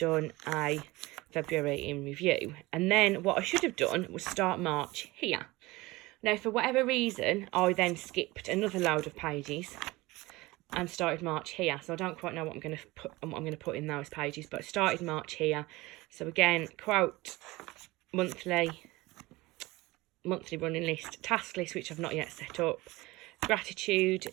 a February in review. And then what I should have done was start March here. Now, for whatever reason, I then skipped another load of pages and started March here. So I don't quite know what I'm going to put in those pages, but I started March here. So again, quote, monthly running list, task list, which I've not yet set up, gratitude.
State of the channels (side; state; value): left; quieter; 20.9 dB